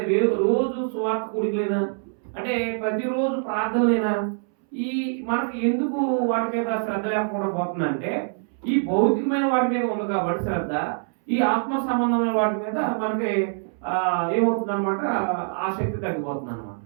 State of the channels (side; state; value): left; silent; 62 dB below the other